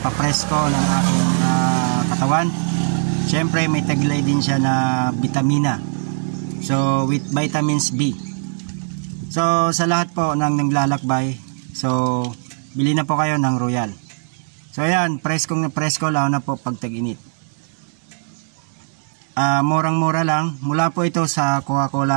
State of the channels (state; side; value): silent; left; digital silence